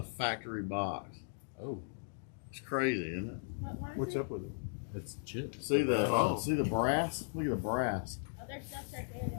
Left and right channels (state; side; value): silent; right; digital silence